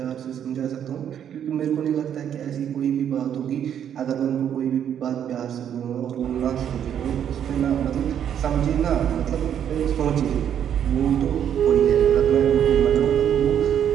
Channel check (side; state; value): left; quieter; 9.3 dB